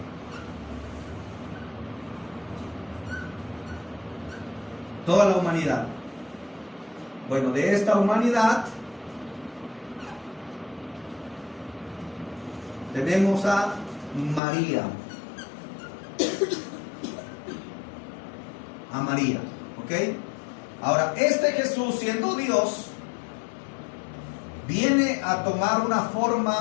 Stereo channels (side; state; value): right; drops out; at 14.4 s